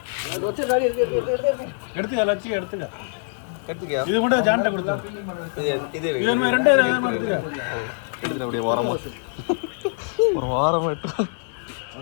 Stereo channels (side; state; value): right; silent; 57 dB below the other